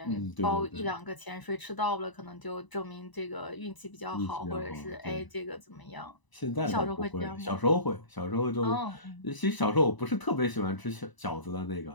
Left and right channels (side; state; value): right; late; 1.0 ms